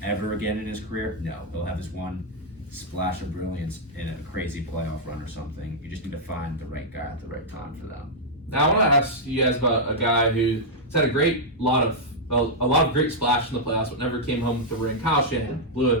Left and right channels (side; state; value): both; normal; correlation -0.05